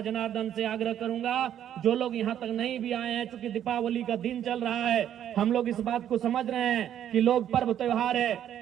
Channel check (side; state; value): left; quieter; 10.4 dB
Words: जनार्दन से आग्रह करूंगा, जो लोग यहाँ तक नहीं भी आए हैं, चूंकि दीपावली का दिन चल रहा है, हम लोग इस बात को समझ रहे हैं कि लोग पर्व त्योहार है,